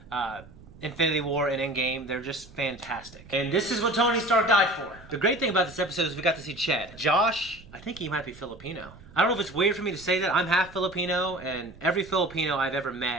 Infinity War and Endgame, they're just fantastic. And this is what Tony Stark died for. The great thing about this episode is we got to see Chad. Josh, I think he might be Filipino. I don't know if it's weird for me to say that. I'm half Filipino, and every Filipino I've ever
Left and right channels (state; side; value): noise; right; rumble, 21 dB below the sound